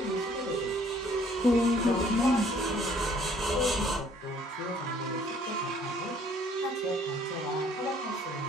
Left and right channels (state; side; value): normal; both; correlation 0.60